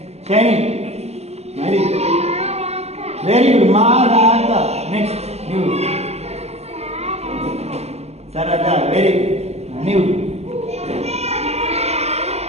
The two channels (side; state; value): left; late; 0.30 ms